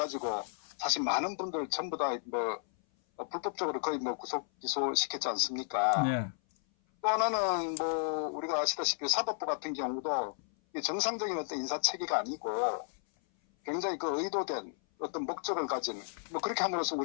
사실 많은 분들 전부 다 불법적으로 거의 구속 기소시켰지 않습니까? 네. 또 하나는 우리가 아시다시피 사법부 같은 경우도 정상적인 어떤 인사 체계가 아니고 굉장히 의도된 어떤 목적을 가진 그렇게 함으로써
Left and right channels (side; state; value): right; silent; 56 dB below the other